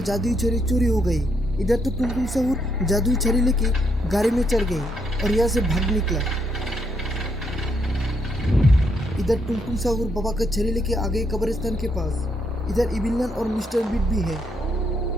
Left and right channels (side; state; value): both; normal; correlation 0.75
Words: जादुई छड़ी चोरी हो गई। इधर तो टुनटुन सहूर जादुई छड़ी लेके गाड़ी में चढ़ गई और यहाँ से भाग निकला। इधर टुनटुन सहूर बाबा का छड़ी लेके आ गए कब्रिस्तान के पास। इधर इबिलन और मिस्टर मीट भी है।